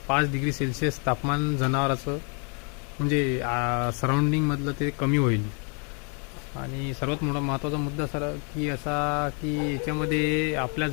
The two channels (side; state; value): right; quieter; 38.0 dB